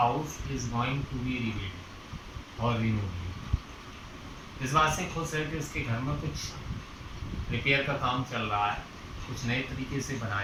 is going to be rebuilt or removed. इस बात से खुश है कि उसके घर में कुछ रिपेयर का काम चल रहा है, कुछ नए तरीके से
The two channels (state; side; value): identical; both; correlation 1.00